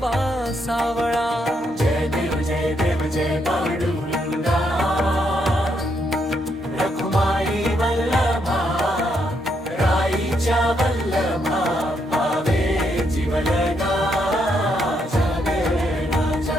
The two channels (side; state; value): both; normal; correlation 0.76